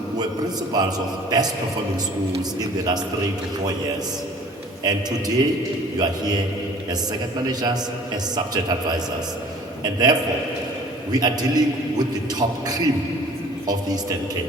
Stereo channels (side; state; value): both; normal; correlation 0.49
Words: were principals of best performing schools in the last 3 to 4 years. And today, you are here as second managers, as subject advisors. And therefore, we are dealing with the top cream of the Eastern